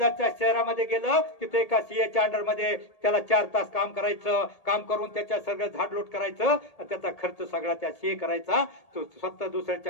शहरामध्ये गेलं. तिथे एका CAच्या अंडरमध्ये त्याला 4 तास काम करायचं. काम करून त्याच्या सगळं झाडलोट करायचं. त्याचा खर्च सगळा त्या CA करायचा. तो स्वतः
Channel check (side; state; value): right; late; 1.8 ms